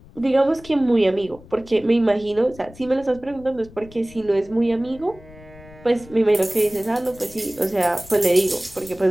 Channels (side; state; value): left; noise; rumble, 21 dB below the sound